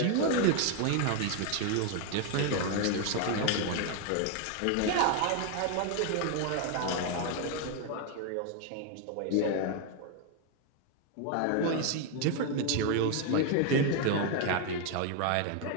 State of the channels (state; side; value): different; both; correlation 0.01